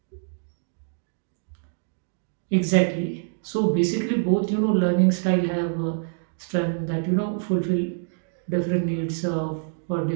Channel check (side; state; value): left; silent; digital silence